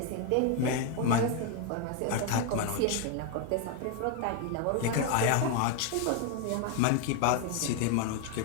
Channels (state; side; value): different; both; correlation 0.01